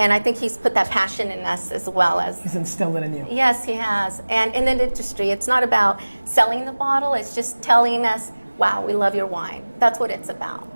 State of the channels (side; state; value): both; inverted; correlation -1.00